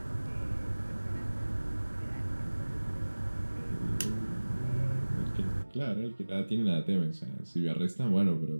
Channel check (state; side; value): inverted; both; correlation -1.00